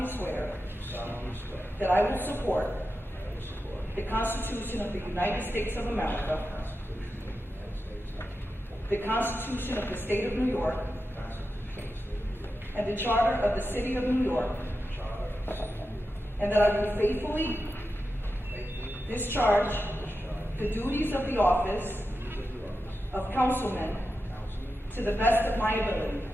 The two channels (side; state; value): both; normal; correlation 0.90